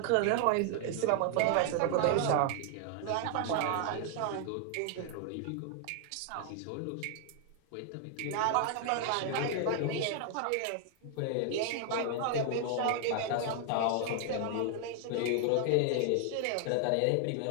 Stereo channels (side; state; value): both; different; correlation 0.00